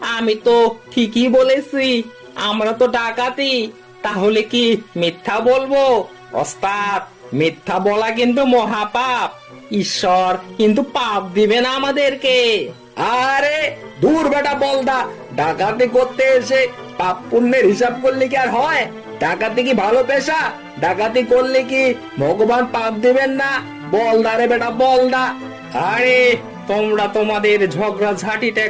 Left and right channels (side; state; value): both; identical; correlation 1.00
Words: আমি তো ঠিকই বলেছি, আমরা তো ডাকাতি, তাহলে কি মিথ্যা বলবো? ওস্তাদ, মিথ্যা বলা কিন্তু মহাপাপ, ঈশ্বর কিন্তু পাপ দিবে না আমাদেরকে। আরে দূর বেটা বলদা, ডাকাতি করতে এসে পাপ পুণ্যের হিসাব করলে কি আর হয়? ডাকাতি কি ভালো পেশা? ডাকাতি করলে কি ভগবান পাপ দিবেন না? বলদা রে বেটা বলদা। আরে তোমরা তোমাদের ঝগড়া ঝাঁটিটা